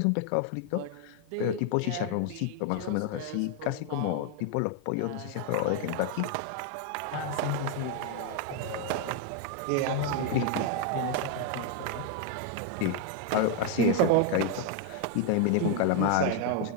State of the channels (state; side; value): different; both; correlation 0.01